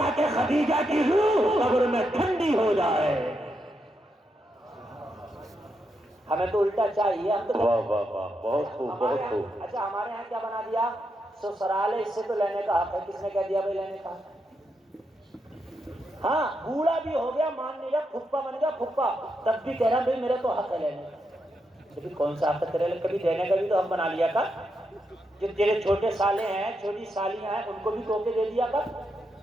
خدیجہ کی روح قبر میں ٹھنڈی ہو جائے. ہمیں تو الٹا چاہیے. ہم تو واہ واہ واہ, بہت خوب بہت خوب. اچھا ہمارے یہاں کیا بنا دیا, سسرال ہے اس سے تو لینے کا حق ہے. کس نے کہہ دیا بھائی لینے کا؟ ہاں بوڑھا بھی ہو گیا مان لیا, پھپھا بن گیا پھپھا, تب بھی کہہ رہا بھائی میرا تو حق ہے لینے کا. لیکن کون سا حق ہے تیرے, کبھی دینے کا بھی تو حق بنا لیا کر. جو تیرے چھوٹے سالے ہیں چھوٹی سالیاں ہیں ان کو بھی تحفے دے دیا کر,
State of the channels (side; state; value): both; normal; correlation 0.83